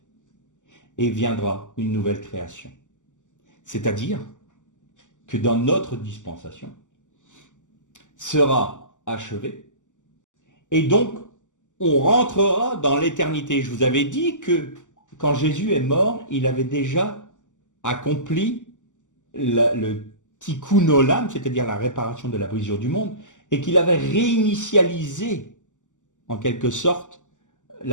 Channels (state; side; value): late; right; 0.86 ms